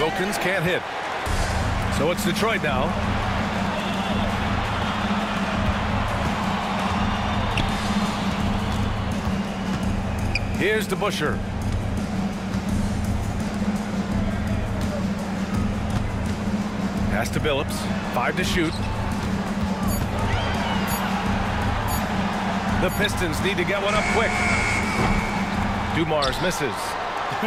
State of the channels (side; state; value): both; identical; correlation 1.00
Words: can't hit. So it's Detroit now. Here's DeBusschere. Pass to Billups. 5 to shoot. The Pistons need to get one up quick. Dumars misses.